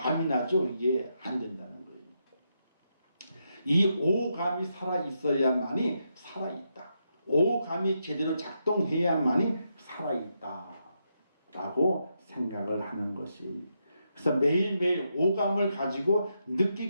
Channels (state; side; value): inverted; both; correlation -0.82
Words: 나죠. 이게 안 된다는 거예요. 이 오감이 살아있어야만이 살아있다. 오감이 제대로 작동해야만이 살아있다 라고 생각을 하는 것이. 그래서 매일매일 오감을 가지고